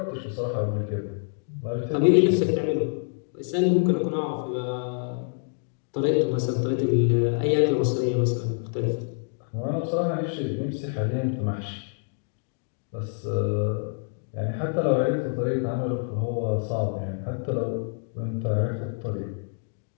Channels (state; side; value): silent; right; digital silence